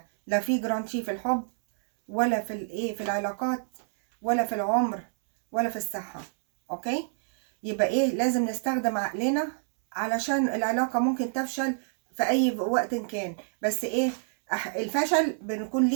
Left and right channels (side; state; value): left; silent; 60 dB below the other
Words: لا في جرانتي في الحب ولا في العلاقات ولا في العمر ولا في الصحة. اوكي، يبقى لازم نستخدم عقلنا علشان العلاقة ممكن تفشل في اي وقت كان. بس الفشل بنكون